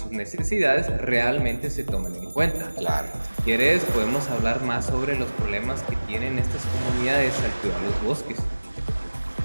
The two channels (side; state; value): both; inverted; correlation -1.00